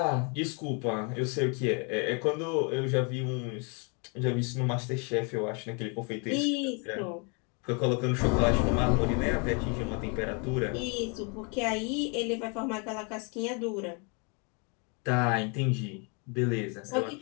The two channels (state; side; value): quieter; right; 35.0 dB